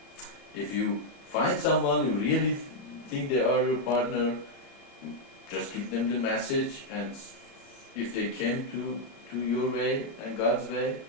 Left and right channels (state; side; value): late; right; 32 ms